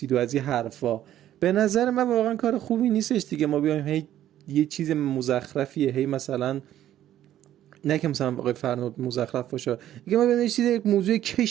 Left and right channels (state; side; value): quieter; left; 12.2 dB